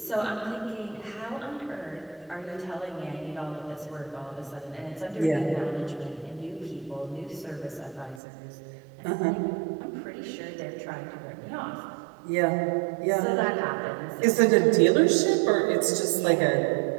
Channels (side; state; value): left; drops out; at 8.2 s